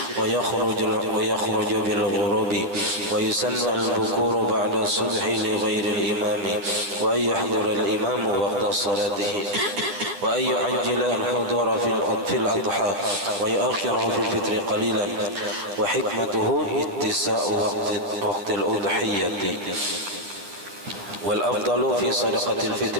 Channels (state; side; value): late; left; 10 ms